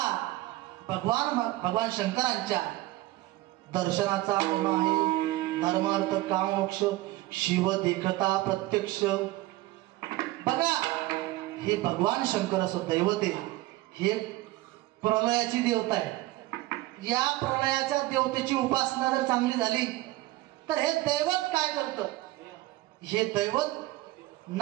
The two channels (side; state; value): left; quieter; 17.8 dB